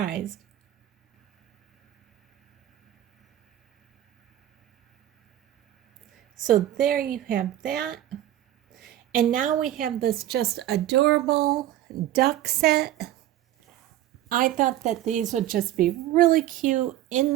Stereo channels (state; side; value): quieter; left; 13.2 dB